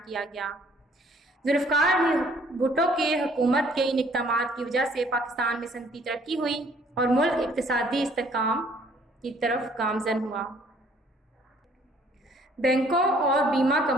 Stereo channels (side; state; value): both; normal; correlation 0.60